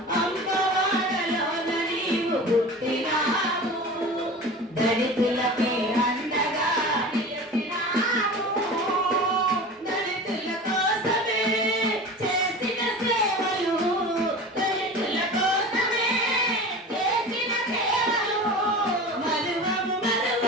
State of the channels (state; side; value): normal; both; correlation 0.35